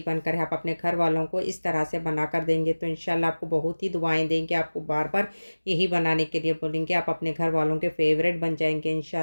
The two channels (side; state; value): both; inverted; correlation -1.00